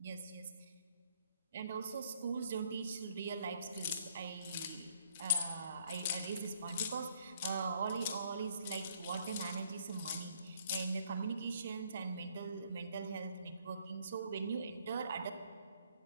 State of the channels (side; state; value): both; inverted; correlation -0.63